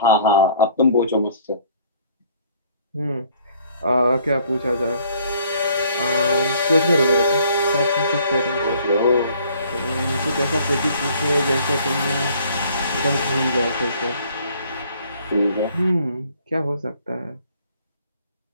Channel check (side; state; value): both; inverted; correlation -0.58